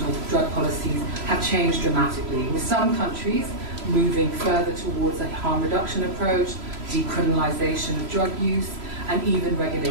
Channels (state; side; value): late; left; 3.0 ms